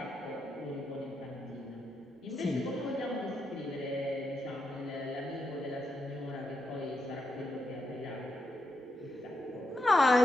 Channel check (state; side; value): normal; both; correlation 0.83